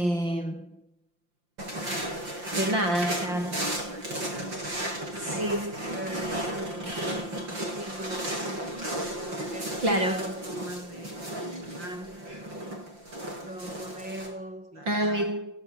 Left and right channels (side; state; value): left; late; 5.7 ms